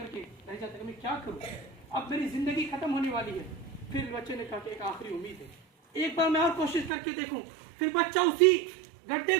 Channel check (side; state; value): left; drops out; at 6.9 s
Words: के रह जाता है, मैं क्या करूं, अब मेरी जिंदगी खत्म होने वाली है। फिर बच्चे ने कहा कि एक आखिरी उम्मीद है, एक बार मैं और कोशिश करके देखूं। फिर बच्चा उसी गड्ढे